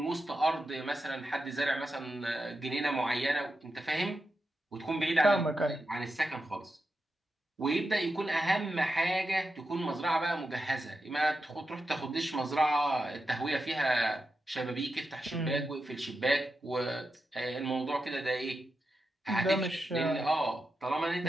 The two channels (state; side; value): normal; both; correlation 0.89